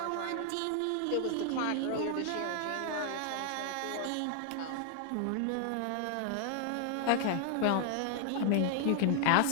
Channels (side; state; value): both; different; correlation 0.00